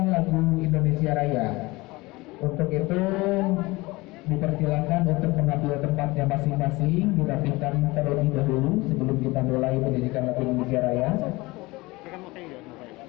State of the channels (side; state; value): right; quieter; 22.1 dB